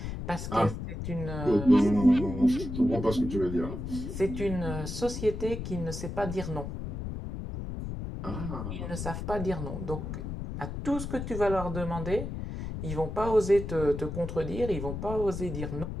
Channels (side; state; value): left; noise; rumble, 6 dB below the sound